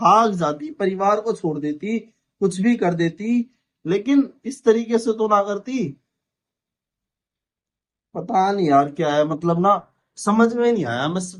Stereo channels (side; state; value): both; identical; correlation 1.00